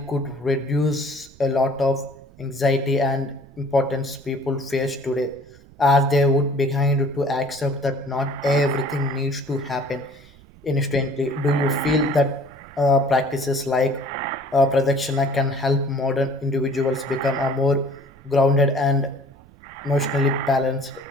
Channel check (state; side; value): noise; right; rumble, 24 dB below the sound